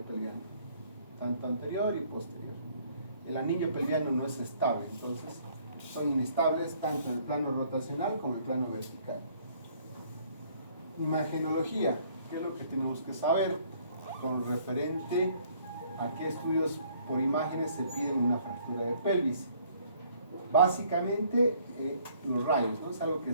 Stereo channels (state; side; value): inverted; both; correlation -0.61